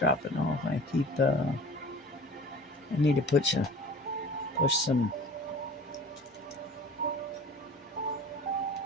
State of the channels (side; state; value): both; normal; correlation 0.42